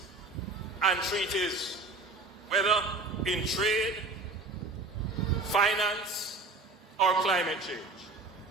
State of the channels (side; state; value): left; quieter; 3.5 dB